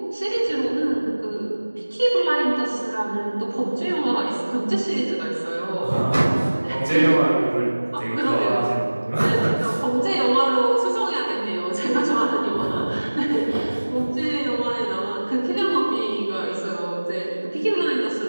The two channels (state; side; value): inverted; both; correlation -1.00